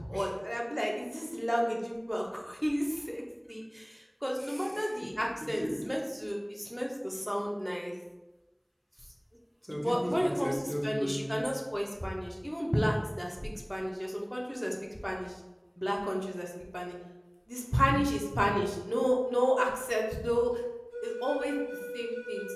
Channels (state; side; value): identical; both; correlation 1.00